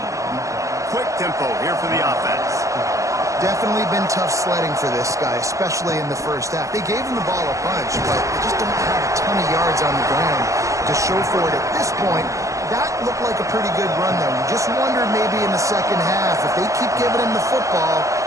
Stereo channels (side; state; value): left; late; 0.15 ms